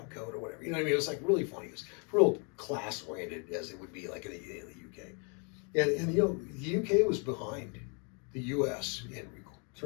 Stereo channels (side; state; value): right; quieter; 36.8 dB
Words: coat or whatever. You know what I mean? It was like really funny. It was real class oriented, as it would be like in the UK. And you know, the UK was behind the US in